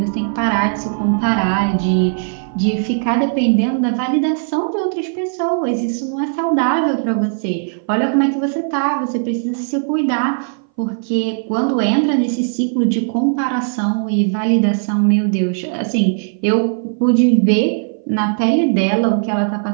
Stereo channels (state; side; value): silent; left; 60 dB below the other